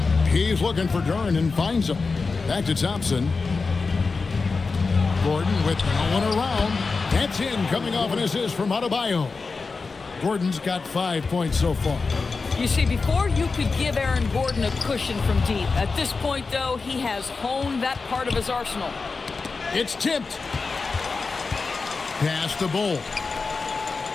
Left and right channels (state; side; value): quieter; right; 4.3 dB